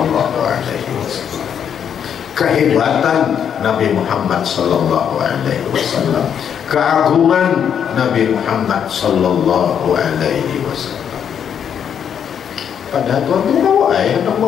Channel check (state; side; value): quieter; right; 8.3 dB